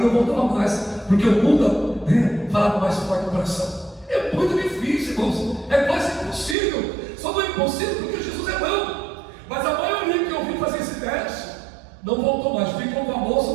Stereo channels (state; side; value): drops out; left; at 6.6 s